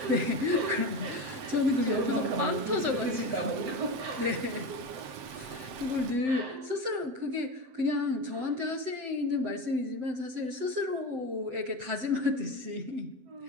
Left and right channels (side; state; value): left; late; 7.7 ms